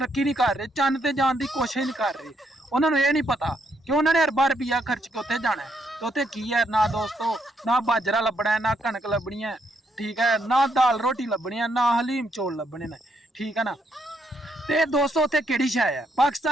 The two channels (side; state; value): both; normal; correlation 0.75